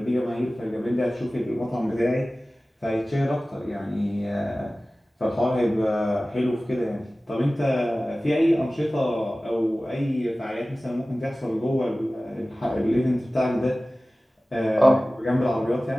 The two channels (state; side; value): normal; both; correlation 0.97